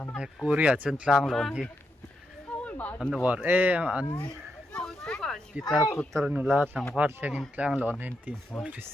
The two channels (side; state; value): both; normal; correlation 0.83